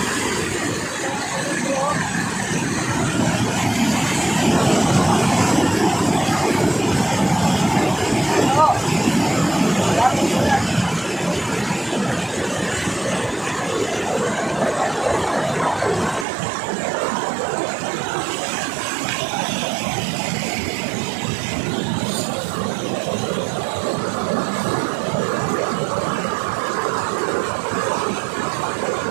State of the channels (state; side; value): drops out; left; at 16.2 s